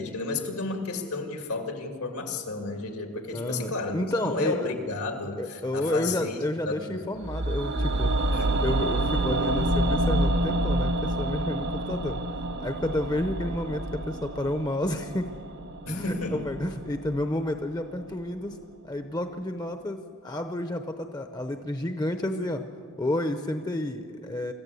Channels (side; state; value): both; normal; correlation 0.56